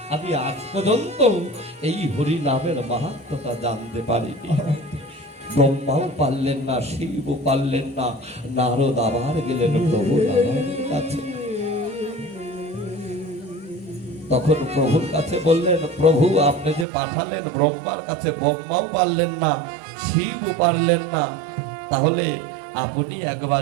আমি আজ পর্যন্ত এই হরি নামের মাহাত্ম্যটা জানতে পারিনি। ব্রহ্মাও পারলেন না, শিবও পারলেন না। নারদ আবার গেলেন প্রভু নারায়ণের কাছে। তখন প্রভুর কাছে বললেন, প্রভু আপনি যে পাঠালেন ব্রহ্মার কাছে, ব্রহ্মাও পারলেন না, শিবও পারলেন না, তাহলে আপনি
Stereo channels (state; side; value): drops out; left; at 16.9 s